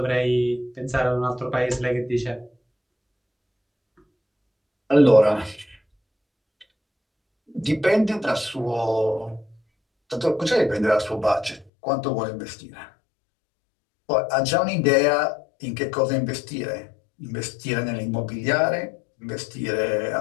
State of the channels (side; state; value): right; drops out; at 11.7 s